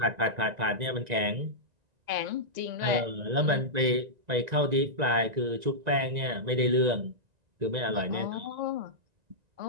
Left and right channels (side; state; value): left; late; 1.9 ms